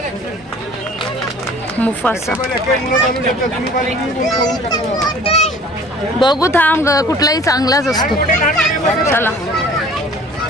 मुफासा. बघू थांब, कुठलाही चांगलाच असतो. चला.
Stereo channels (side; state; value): both; normal; correlation 0.48